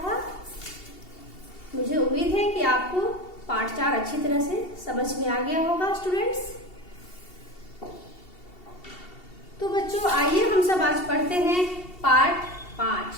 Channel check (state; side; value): late; right; 2.7 ms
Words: था। मुझे उम्मीद है कि आपको पाठ 4 अच्छी तरह से समझ में आ गया होगा स्टूडेंट्स। तो बच्चों आइए हम सब आज पढ़ते हैं पाठ